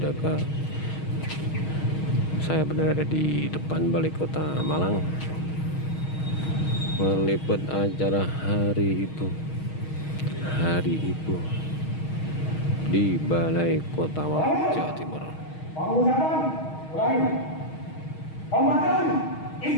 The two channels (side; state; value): right; late; 6.4 ms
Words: Saya berada di depan Balai Kota Malang, meliput acara Hari Ibu di Balai Kota Malang, Jawa Timur. Pengucapan mulai. Pembacaan